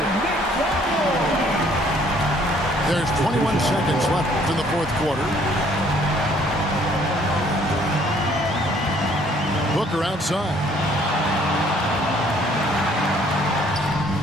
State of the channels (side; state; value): both; normal; correlation 0.61